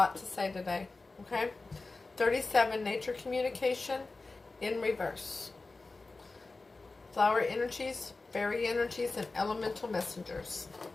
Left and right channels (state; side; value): quieter; right; 3.6 dB